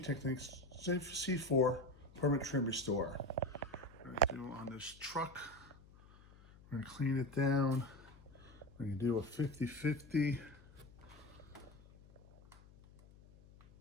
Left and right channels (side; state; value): left; noise; hum, 22 dB below the sound